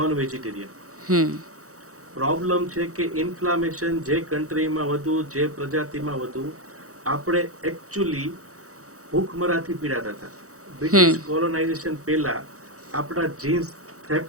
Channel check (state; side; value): late; left; 0.65 ms